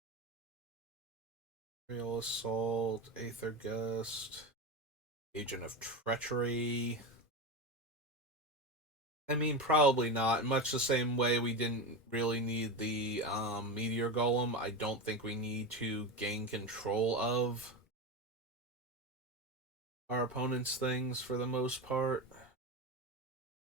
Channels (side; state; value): both; normal; correlation 0.20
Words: Real Assault, Aether Gust, Agent of Treachery. I mean, probably not. Much the same way we didn't really need the Meteor Golem, I don't think we need to gain control of our opponent's things for the most part.